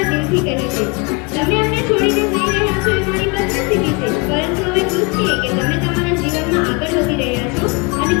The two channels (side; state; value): right; quieter; 29.2 dB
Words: દિલથી કહી છે. તમે અમને છોડીને જઈ રહ્યા છો એ મારી બદનસીબી છે, પરંતુ અમે ખુશ છીએ કે તમે તમારા જીવનમાં આગળ વધી રહ્યા છો અને